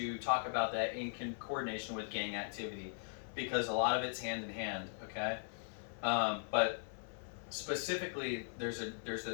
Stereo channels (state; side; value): silent; right; 51 dB below the other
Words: talk about that in coordination with gang activity because a lot of it's hand in hand. Okay, but specifically, there's